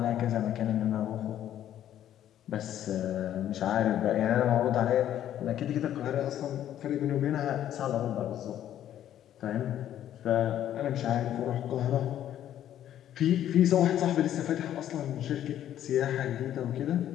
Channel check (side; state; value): right; quieter; 11.3 dB